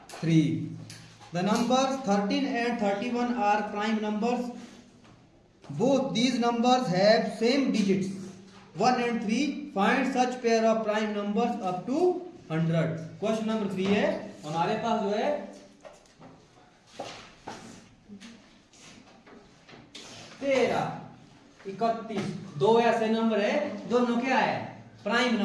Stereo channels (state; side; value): identical; both; correlation 1.00